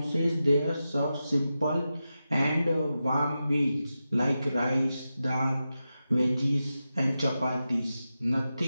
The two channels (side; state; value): both; inverted; correlation -0.91